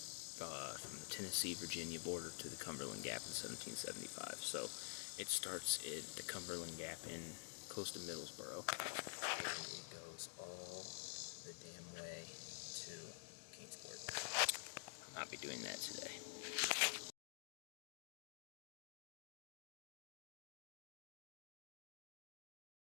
from the Tennessee-Virginia border to the Cumberland Gap in 1775. So it starts at the Cumberland Gap in close to Middlesboro, and it goes all the damn way to Kingsport. I'll not be doing that today.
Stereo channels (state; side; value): silent; right; digital silence